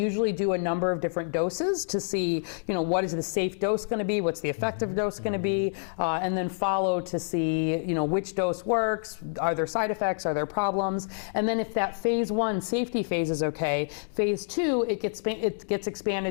do a number of different doses to see, what is the safe dose going to be, what's the effective dose going to be, and then follow to see, which dose works, are there side effects, are there problems, and then if that phase 1 safety phase is okay, phase 2 it gets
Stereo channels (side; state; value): right; silent; digital silence